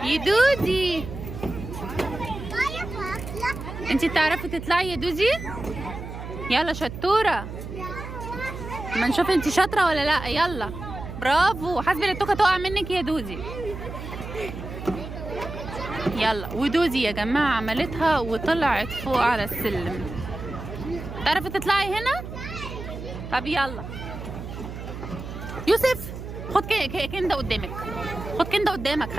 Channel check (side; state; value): right; noise; hum, 9 dB below the sound